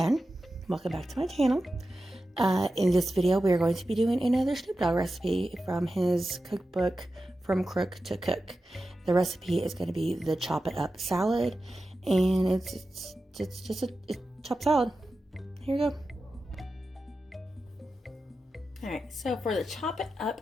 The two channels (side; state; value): both; normal; correlation 0.92